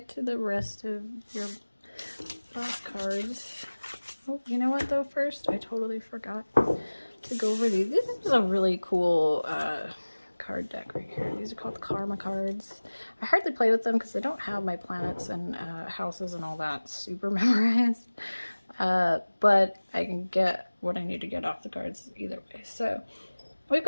to the rest of your last cards. Oh, you know what though? First, I totally forgot to go over these. This is a really cool card deck right here. These are called Karma cards. I hardly play with them because I don't have my planets and houses and all that super memorized. But I can get what I need to get off the cards either way. So we've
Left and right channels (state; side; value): inverted; both; correlation -1.00